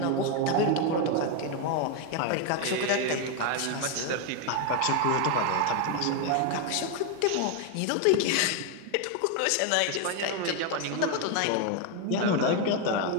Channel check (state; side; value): different; both; correlation 0.01